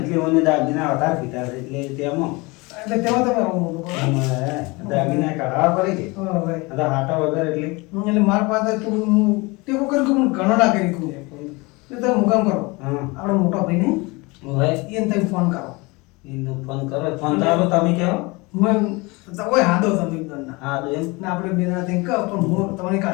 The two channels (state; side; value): quieter; right; 25.4 dB